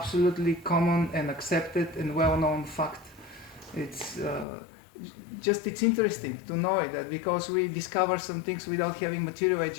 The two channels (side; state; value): right; drops out; at 4.5 s